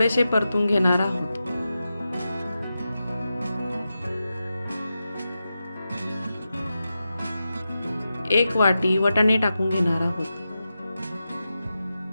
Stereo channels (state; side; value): inverted; both; correlation -0.91